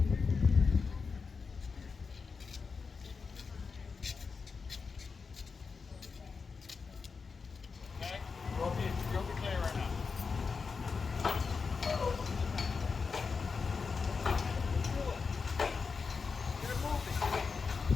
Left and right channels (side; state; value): right; quieter; 5.0 dB